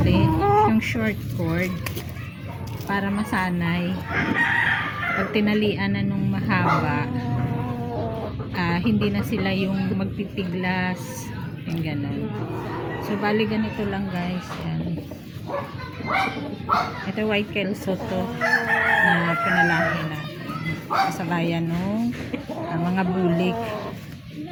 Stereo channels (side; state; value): both; identical; correlation 1.00